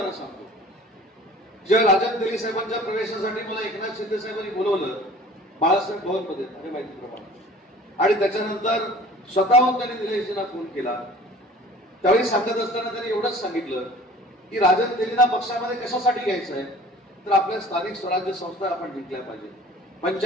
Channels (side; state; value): both; normal; correlation 0.46